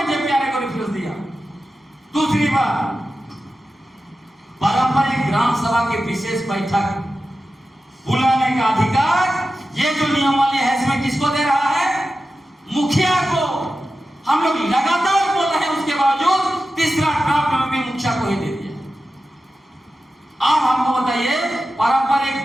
जेपीआरए को रेफरेंस दिया? दूसरी बात, पारंपरिक ग्राम सभा की विशेष बैठक बुलाने का अधिकार ये जो नियमावली है इसमें किसको दे रहा है? मुखिया को। हम लोग लगातार बोल रहे हैं, उसके बावजूद तीसरा ड्राफ्ट में भी मुखिया को ही दे दिया। आप हमको बताइए, पारंपरिक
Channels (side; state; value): both; normal; correlation 0.93